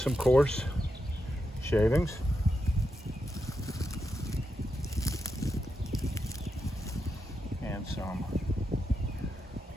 coarse shavings. And some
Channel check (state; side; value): normal; both; correlation 0.86